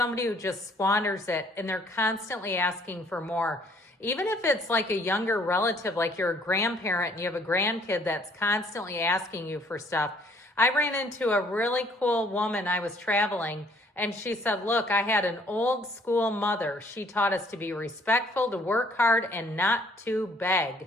who just squanders it and they're constantly asking for more. Even if it's like a younger relative, like you're a grandparent and you have a grandkid that's constantly asking you for stuff. I ran into a really cool woman. I was traveling and she said, look, I had an old school mother. She taught us to be respectful, to work hard, and not to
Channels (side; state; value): both; normal; correlation 0.61